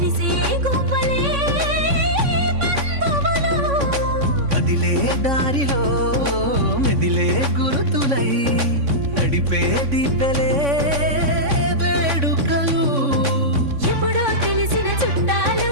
గువ్వలే బంధువులు. కదిలే దారిలో మెదిలే గురుతులై నడిపే దివ్యలే వేడుకలు. ఎప్పుడో తెలిసిన చుట్టాలు,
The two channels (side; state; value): left; late; 3.5 ms